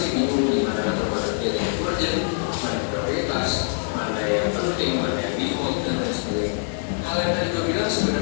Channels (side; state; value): right; silent; 62 dB below the other